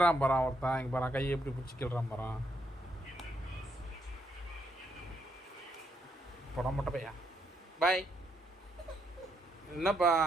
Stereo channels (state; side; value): normal; both; correlation 0.76